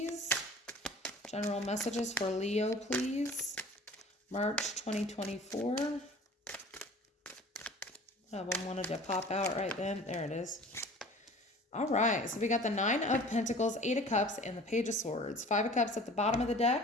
General messages for Leo, please. March 2024. One of them wanted to pop out right then. There it is. All right, so we got the 9 of Pentacles, 8 of Cups, and the Page of Swords. 5 of Cups at the bottom of the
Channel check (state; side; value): normal; both; correlation 0.45